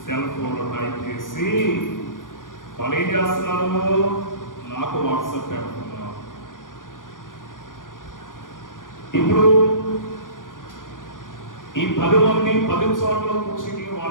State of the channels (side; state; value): right; late; 0.89 ms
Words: సెల్ ఫోన్లో టైప్ చేసి వాళ్ళు ఏం చేస్తున్నారు? నాకు వాట్సాప్ పెడుతున్నారు. ఇప్పుడు ఈ 10 మంది 10 చోట్ల కూర్చుని